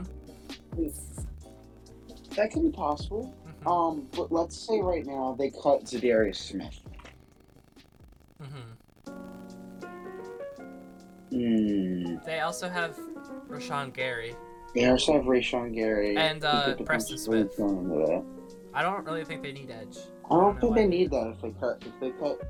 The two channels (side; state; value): both; identical; correlation 1.00